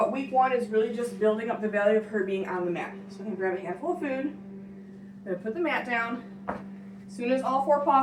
week 1 is really just building up the value of her being on the mat. So I'm going to grab a handful of food. I'm going to put the mat down. As soon as all 4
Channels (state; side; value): identical; both; correlation 1.00